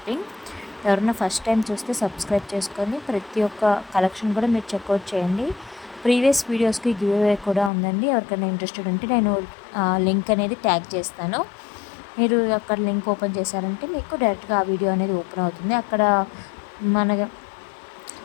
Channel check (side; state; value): right; drops out; at 7.7 s